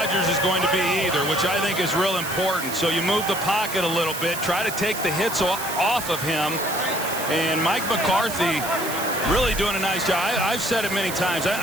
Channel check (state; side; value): noise; right; hiss, 8 dB below the sound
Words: is going to be either, which I think is real important. So you move the pocket a little bit, try to take the hits off of him. And Mike McCarthy really doing a nice job. I've said it many times.